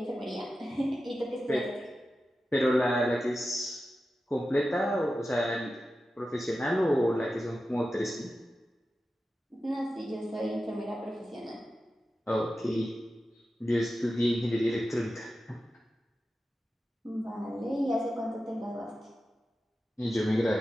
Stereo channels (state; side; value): normal; both; correlation 0.92